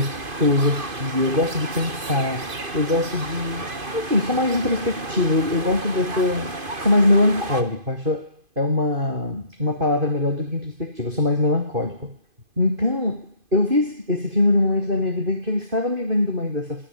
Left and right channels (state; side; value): late; left; 2.5 ms